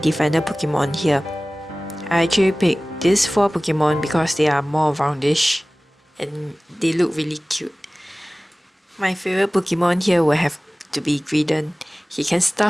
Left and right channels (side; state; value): both; normal; correlation 0.98